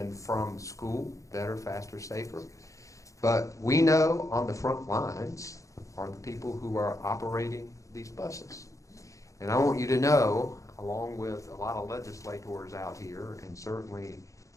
from school better, faster, safer. But we know on the front lines are the people who are operating these buses. And I want you to know, along with a lot of legislators out here, and certainly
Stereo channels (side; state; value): right; late; 0.15 ms